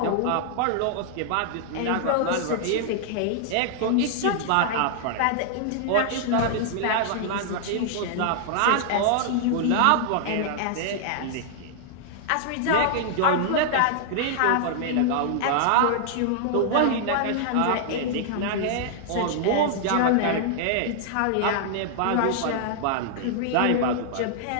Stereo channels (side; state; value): both; different; correlation -0.01